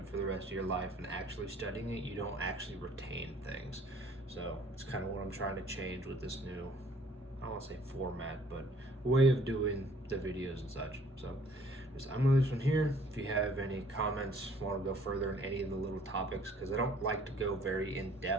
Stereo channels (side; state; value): both; normal; correlation 0.57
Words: for the rest of your life and actually studying it, you don't actually retain things. So it's kind of what I'm trying to change with this new, I don't want to say format, but way of doing the videos and such. So I'm going to leave this one here. If you have any comments, want to go further in any of the little topics, because I don't like to go very in